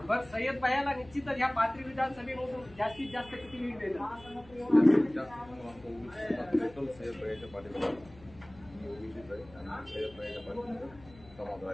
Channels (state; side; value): noise; left; hum, 22 dB below the sound